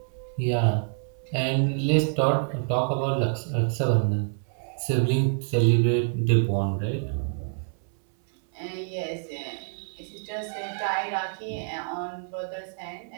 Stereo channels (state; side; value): silent; left; 60 dB below the other